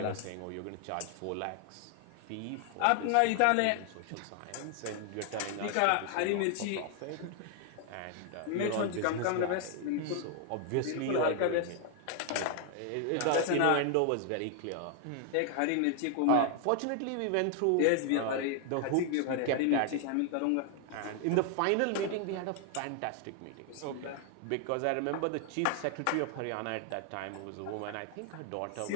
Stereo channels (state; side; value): different; both; correlation 0.00